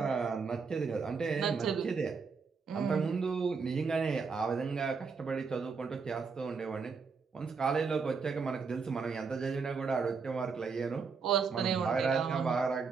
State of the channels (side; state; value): left; quieter; 5.2 dB